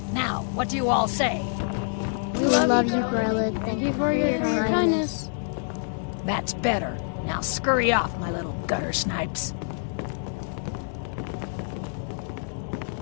Now, what do you all say? We love you, Grella. Thank you for your kindness. That's better. Now scurry off, my little gutter snipes.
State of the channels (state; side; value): silent; right; digital silence